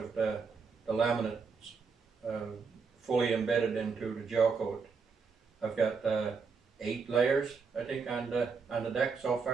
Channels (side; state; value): left; quieter; 5.2 dB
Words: the laminates fully embedded into the gel coat. I've got 8 layers, I think, on the deck so